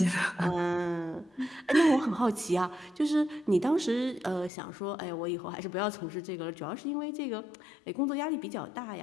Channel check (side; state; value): right; drops out; at 4.5 s